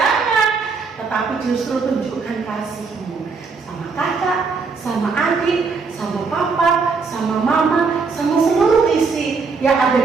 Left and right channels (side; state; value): left; quieter; 4.7 dB